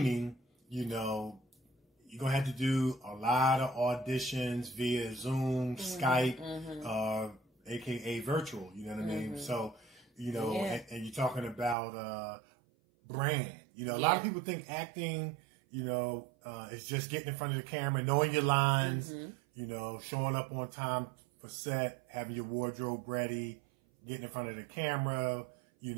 you know, you're gonna have to do a lot of auditions via Zoom, Skype, aka virtual. You know what I mean? So. You know, and you're talking about brand. You know, a lot of people think acting, you know, is just getting in front of the camera, knowing your lines, you know, showing up on time for set, having your wardrobe ready, getting in front of the camera, you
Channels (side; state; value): left; drops out; at 11.8 s